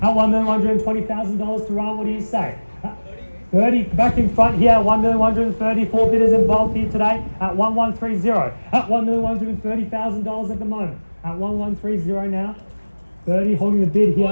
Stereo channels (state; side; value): inverted; both; correlation -1.00